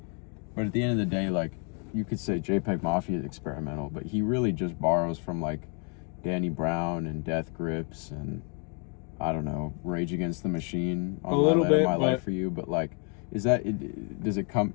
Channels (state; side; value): quieter; right; 38.4 dB